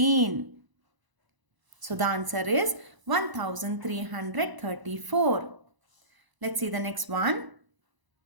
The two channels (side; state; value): left; late; 1.0 ms